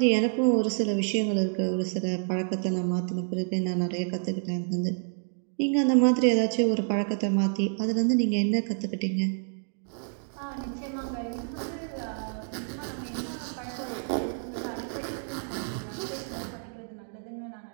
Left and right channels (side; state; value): left; silent; 59 dB below the other